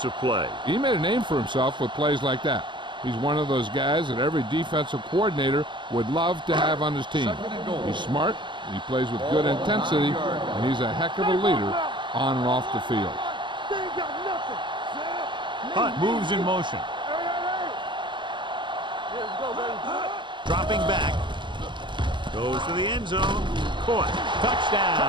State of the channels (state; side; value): late; left; 0.23 ms